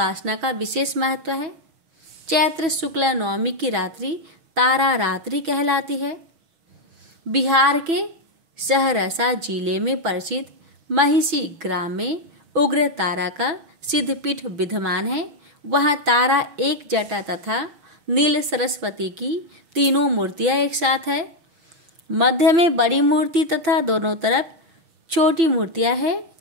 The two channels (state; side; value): late; left; 6.1 ms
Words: का विशेष महत्व है। चैत्र शुक्ल नवमी की रात्रि तारा रात्रि कहलाती है। बिहार के सहरसा जिले में प्रसिद्ध महिषी ग्राम में उग्र तारा का सिद्धपीठ विद्यमान है। वहाँ तारा, एक जटा तथा नील सरस्वती की 3 मूर्तियां एक साथ है। मध्य में बड़ी मूर्ति तथा दोनों तरफ छोटी मूर्तियां है।